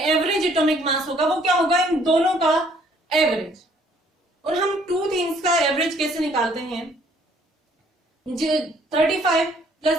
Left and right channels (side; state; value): both; normal; correlation 0.62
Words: एवरेज एटॉमिक मास होगा, वो क्या होगा, इन दोनों का एवरेज। और हम 2 थिंग्स का एवरेज कैसे निकालते हैं? 35 प्लस